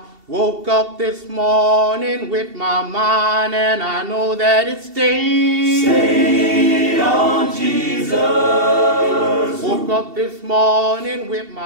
woke up this morning with my mind, and I know that it stayed on Jesus. Woke up this morning with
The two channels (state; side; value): late; left; 2.7 ms